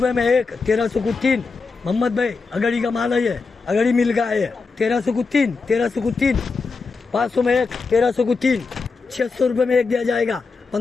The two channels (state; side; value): quieter; right; 4.4 dB